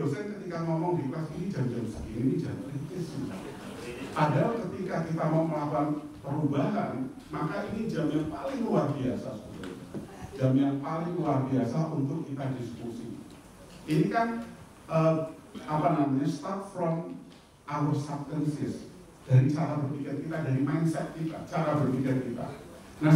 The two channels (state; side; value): identical; both; correlation 1.00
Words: ketika ngomong di kelas ini jam-jam segini, ini jam kritis. Padahal ketika kita mau melakukan perubahan, maka ini jam yang paling luar biasa sebetulnya. Jam yang paling luar biasa untuk kita diskusi. Ini kan start from our subconscious. Dari cara berpikir kita, dari mindset kita, cara berpikir kita. Nah